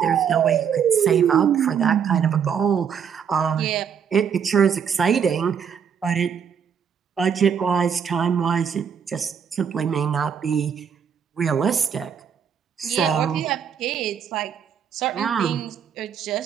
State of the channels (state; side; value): quieter; left; 7.5 dB